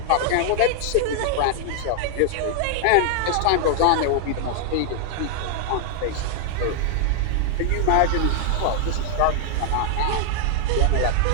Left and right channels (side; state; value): both; different; correlation 0.00